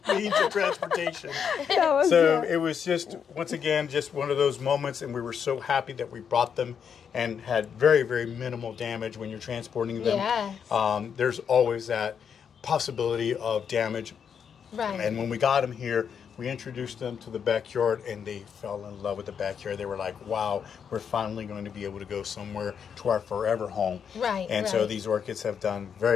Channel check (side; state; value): right; quieter; 7.3 dB